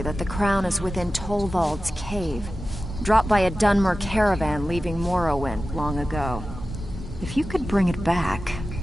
the crown is within Tolvald's cave, dropped by a Dunmer caravan leaving Morrowind long ago. If you could bring it back,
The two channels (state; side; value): normal; both; correlation 0.94